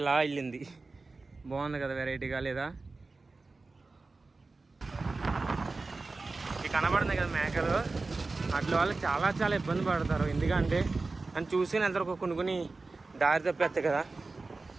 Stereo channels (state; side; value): quieter; left; 3.7 dB